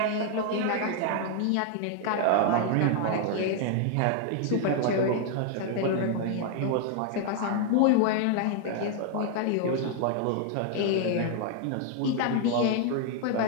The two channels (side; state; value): both; different; correlation 0.00